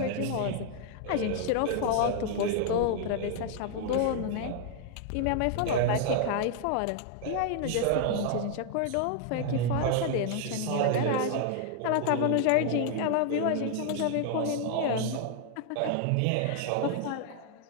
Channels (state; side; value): different; both; correlation 0.00